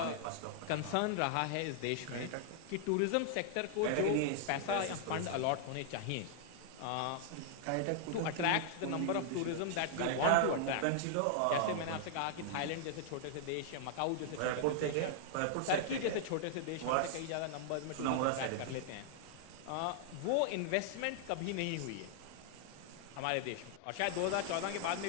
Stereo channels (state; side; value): different; both; correlation -0.01